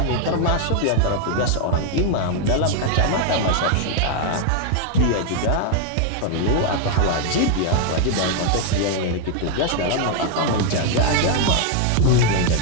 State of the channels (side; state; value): both; different; correlation 0.00